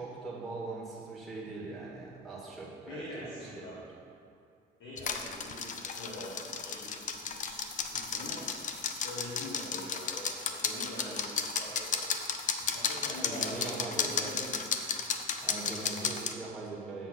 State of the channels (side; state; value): right; quieter; 4.1 dB